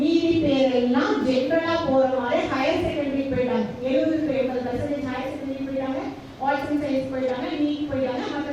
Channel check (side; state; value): both; identical; correlation 1.00